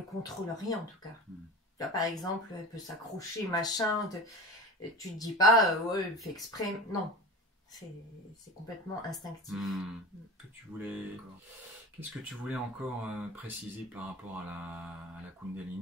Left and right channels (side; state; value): both; normal; correlation 0.33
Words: contrôle rien en tout cas. Tu vois, par exemple, elle peut s'accrocher, machin, tu te dis pas, elle fait exprès. Non, c'est complètement instinctif. Qu'est-ce que tu voulais encore préciser par rapport à la